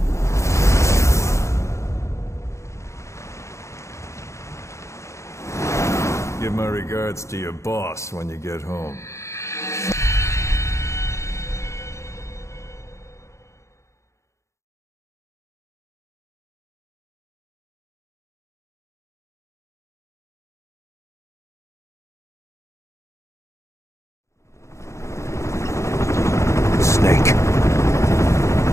Give my regards to your boss when you get home. Snake.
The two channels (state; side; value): late; right; 0.14 ms